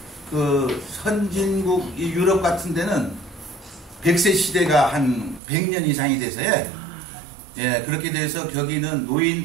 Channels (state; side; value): drops out; left; at 5.4 s